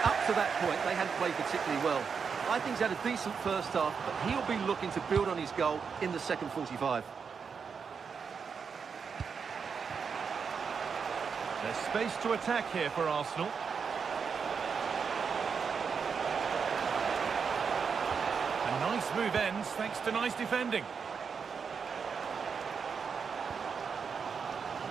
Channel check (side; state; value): left; quieter; 6.0 dB